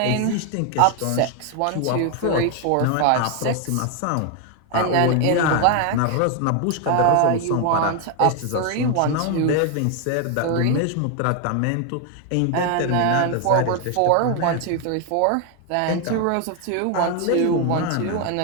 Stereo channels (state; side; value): different; both; correlation 0.01